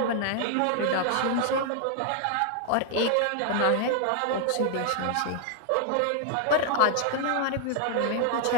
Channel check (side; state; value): both; different; correlation 0.00